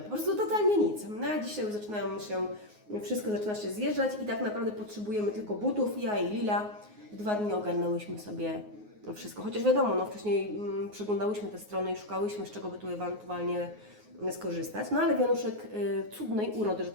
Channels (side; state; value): left; late; 9.5 ms